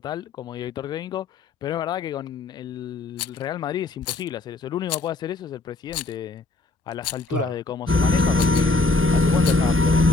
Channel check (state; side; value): quieter; right; 3.3 dB